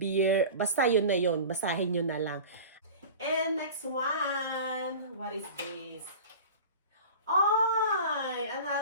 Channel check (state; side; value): inverted; both; correlation -0.36